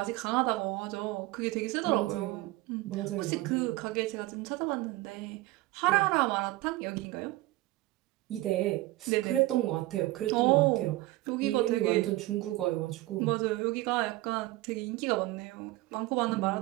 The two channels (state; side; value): quieter; left; 18.7 dB